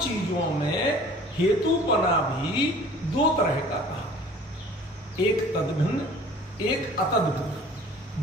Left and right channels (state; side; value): normal; both; correlation 0.48